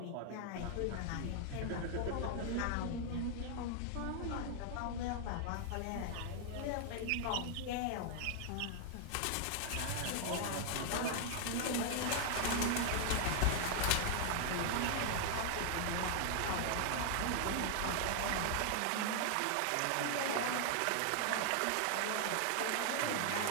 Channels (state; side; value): different; both; correlation 0.00